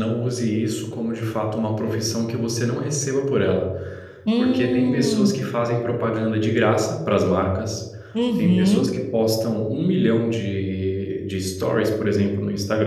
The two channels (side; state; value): both; identical; correlation 1.00